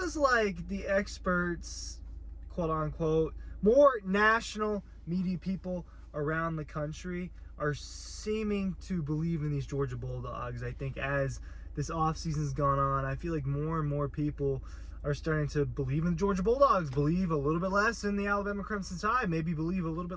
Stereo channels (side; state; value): both; identical; correlation 1.00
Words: like the experts, quote-unquote, more national media people around the country are seeming to believe in these Georgia Bulldogs. I think as this offseason's gone on, I feel like more and more people are starting to believe in the Georgia Bulldogs, believe a little bit less in the Alabama Crimson Tide, maybe believe a little